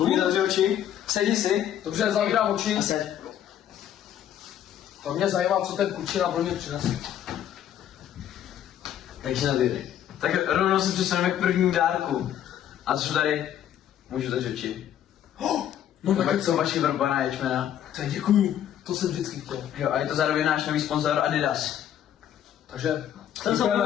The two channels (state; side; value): quieter; right; 10.6 dB